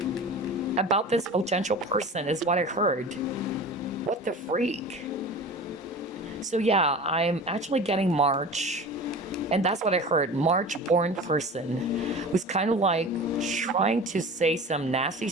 About this potential person is what I heard. What the freak? So yeah, I'm actually getting March. And that's what I heard. March-born person who's kind of like trying to say some nasty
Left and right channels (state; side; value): normal; both; correlation 0.36